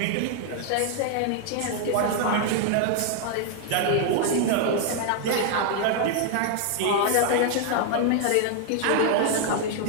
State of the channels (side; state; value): both; different; correlation 0.00